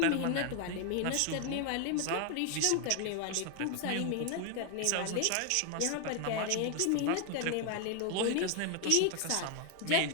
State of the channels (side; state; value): both; different; correlation 0.00